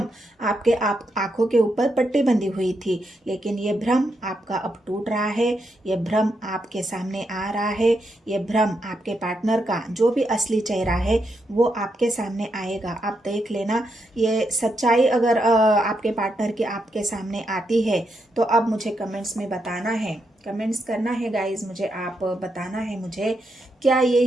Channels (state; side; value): normal; both; correlation 0.82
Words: आपके आंखों के ऊपर पट्टी बंधी हुई थी, लेकिन ये भ्रम आपका अब टूट रहा है। ये भ्रम आपके सामने आ रहा है। ये भ्रम आपके पार्टनर का जो भी असली चेहरा है वो आपके सामने आएगा। आप देख लेना, ये सच्चाई अगर आपके पार्टनर की आपके सामने आती है तो अब मुझे कमेंट्स में बताना है, कमेंट्स करना है गाइज, मुझे आप बताना है मुझे क्या ये